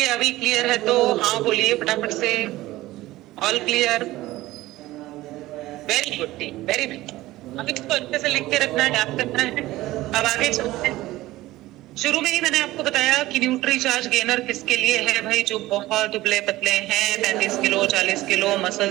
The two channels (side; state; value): left; quieter; 17.2 dB